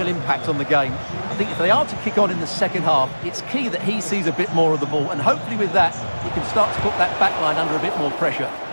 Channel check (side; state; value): both; inverted; correlation -1.00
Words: impact on the game. I think if they are to kick on in the second half, it's key that he sees a bit more of the ball, and hopefully with that, he can start to put that back line under a bit more pressure.